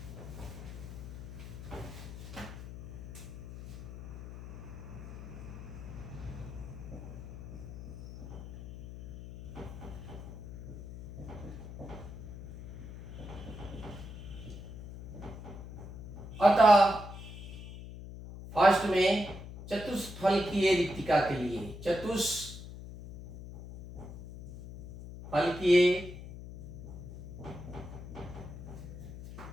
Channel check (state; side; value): noise; left; hum, 12 dB below the sound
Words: अतः फर्स्ट में चतुष्फलकीय रिक्तिका के लिए, चतुष्फलकीय